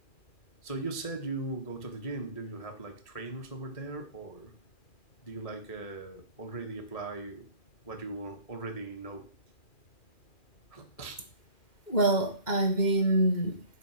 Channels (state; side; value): late; right; 2.4 ms